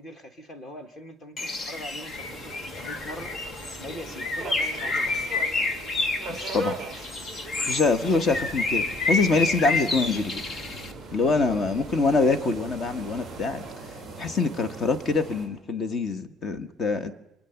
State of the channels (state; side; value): quieter; right; 3.0 dB